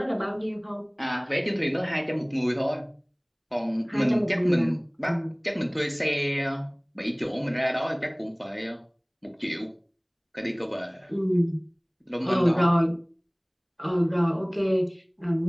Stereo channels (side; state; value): both; identical; correlation 1.00